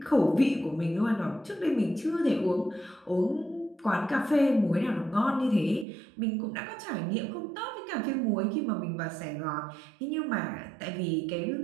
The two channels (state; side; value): drops out; left; at 5.9 s